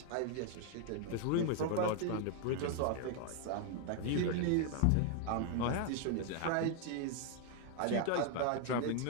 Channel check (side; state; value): both; different; correlation 0.00